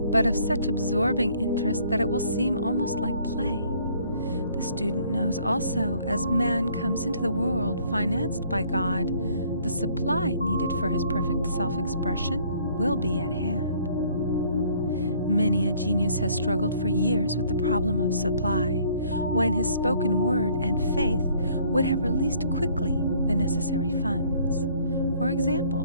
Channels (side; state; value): both; inverted; correlation -0.60